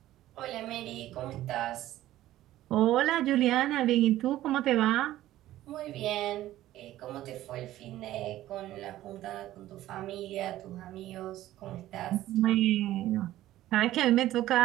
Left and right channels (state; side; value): quieter; left; 14.5 dB